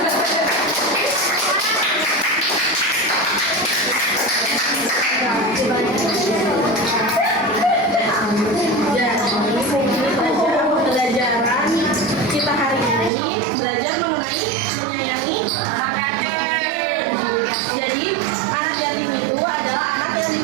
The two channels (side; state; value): left; drops out; at 13.1 s